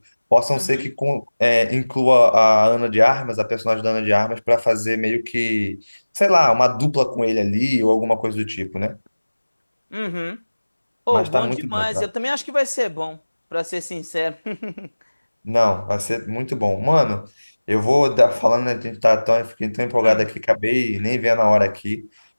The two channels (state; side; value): inverted; both; correlation -1.00